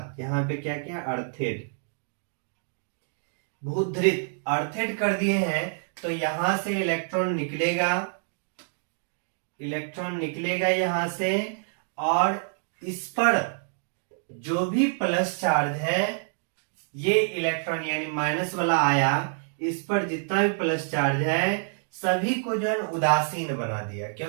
यहाँ पे क्या किया, अर्थेड भूधृत अर्थेड कर दिए हैं, तो यहां से इलेक्ट्रॉन निकलेगा, इलेक्ट्रॉन निकलेगा यहां से, और इस पर जो भी प्लस चार्ज है ये इलेक्ट्रॉन यानी माइनस वाला आया, इस पर जितना भी प्लस चार्ज है सभी को जो है उदासीन बना दिया,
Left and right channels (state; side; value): silent; left; digital silence